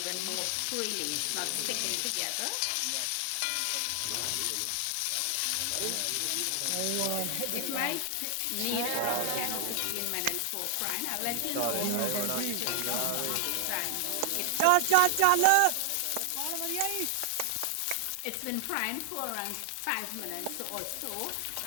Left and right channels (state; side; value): different; both; correlation 0.00